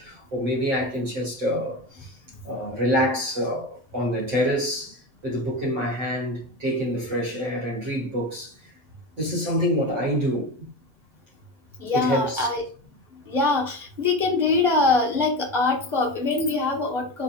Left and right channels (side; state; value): left; late; 7.7 ms